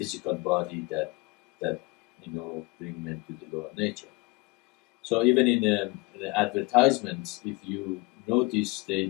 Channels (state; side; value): quieter; right; 25.0 dB